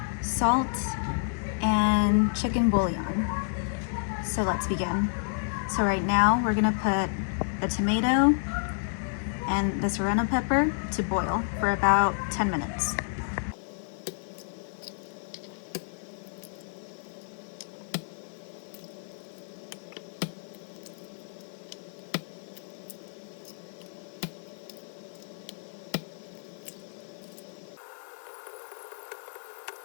salt, and chicken bouillon. So let's begin. So right now we're gonna put the tomato and the serrano pepper to boil for about 10 minutes.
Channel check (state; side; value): silent; right; digital silence